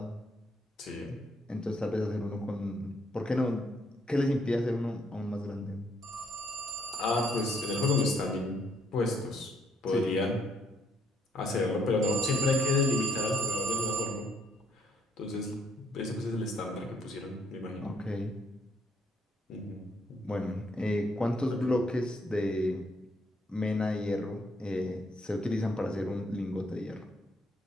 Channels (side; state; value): both; normal; correlation 0.70